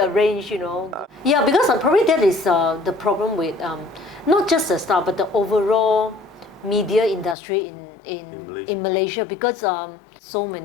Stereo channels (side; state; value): right; drops out; at 7.4 s